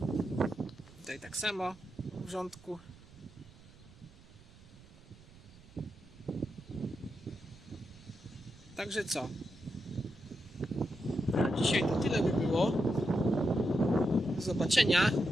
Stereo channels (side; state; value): right; noise; rumble, 22 dB below the sound